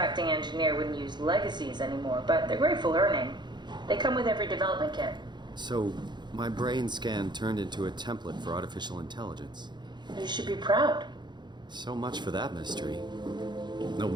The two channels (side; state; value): left; late; 0.21 ms